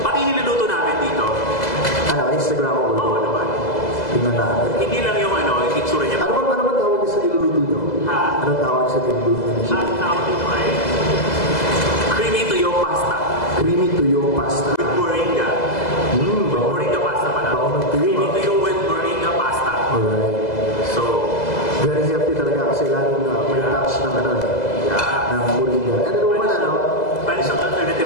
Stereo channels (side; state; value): right; late; 2.0 ms